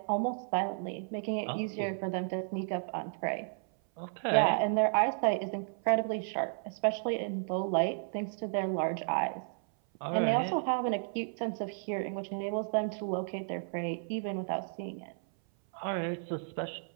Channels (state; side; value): silent; left; 56 dB below the other